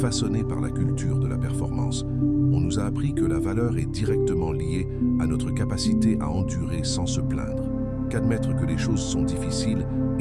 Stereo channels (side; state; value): both; identical; correlation 1.00